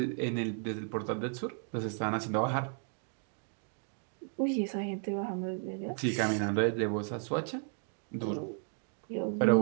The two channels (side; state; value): left; silent; 55 dB below the other